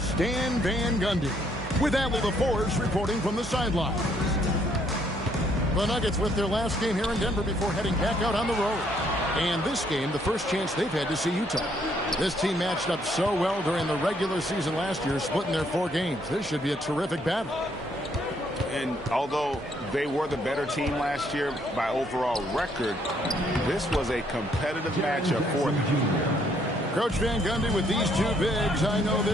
Stan Van Gundy. With Adley LaForce reporting from the sidelines. The Nuggets with their last game here in Denver before heading back out on the road. And this game, the first chance they've had to see Utah. This team matched up so well during the regular season last year, splitting their 4 games. This should be a terrific battle. And although they were the better team last year by overall record, this was a competitive matchup for them. Coach Van Gundy with these 2 bigs. I know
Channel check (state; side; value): normal; both; correlation 0.69